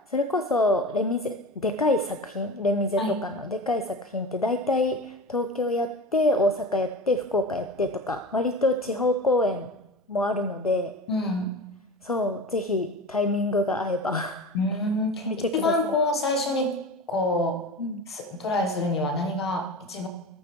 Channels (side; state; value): both; normal; correlation 0.32